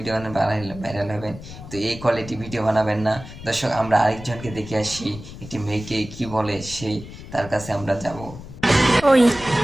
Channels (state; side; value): noise; left; rumble, 14 dB below the sound